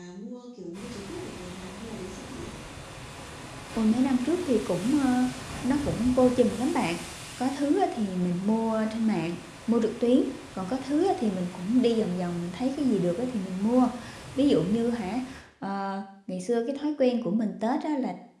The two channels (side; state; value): both; identical; correlation 1.00